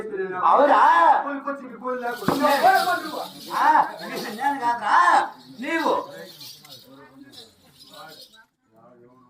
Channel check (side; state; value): both; identical; correlation 1.00